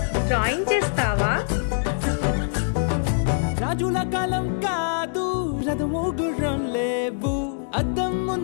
డ్రాయింగ్ చేస్తావా? రాజుల కాలం కాదు, రథము గుర్రం లేవు, అద్దం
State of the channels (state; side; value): silent; right; digital silence